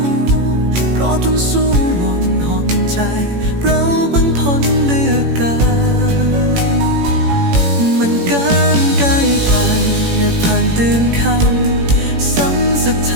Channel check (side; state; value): left; late; 18 ms